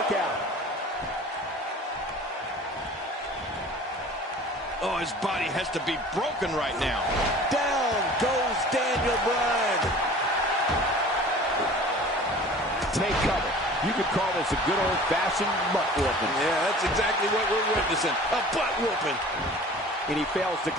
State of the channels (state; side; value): normal; both; correlation 0.44